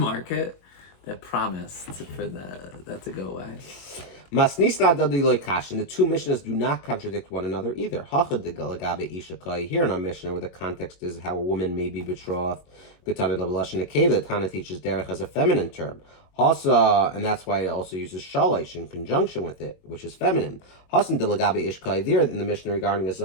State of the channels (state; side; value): late; right; 22 ms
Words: that promise for that to go away. Masnisna dadi kash, and the two Mishnahs do not contradict one another either. Hachad de galagabe ishakai. Here in our Mishnah, where the context is how a woman may be betrothed. Gutana levelashon nekeva. The Tana teaches derech as a feminine term. Hasa, and that's why it also uses shalish in conjunction with it, which is feminine. Hasan de lagabe ishkai. There in the Mishnah regarding a